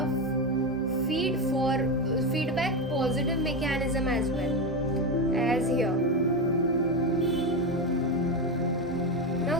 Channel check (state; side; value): normal; both; correlation 0.14